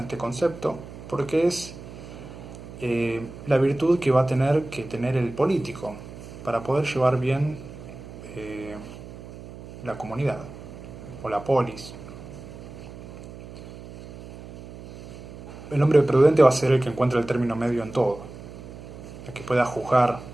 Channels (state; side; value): noise; right; hum, 14 dB below the sound